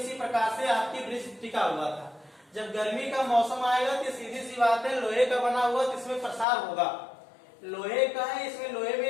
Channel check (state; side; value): drops out; right; at 6.5 s